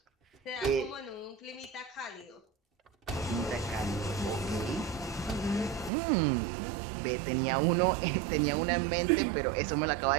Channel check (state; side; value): drops out; left; at 5.9 s